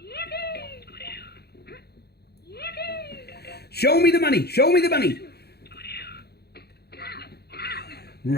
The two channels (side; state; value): right; late; 0.47 ms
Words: Show me the money! Show me the money!